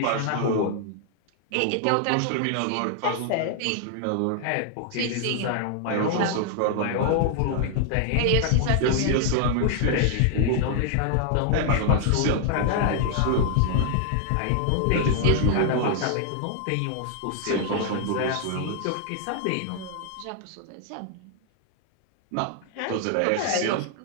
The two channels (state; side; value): different; both; correlation 0.00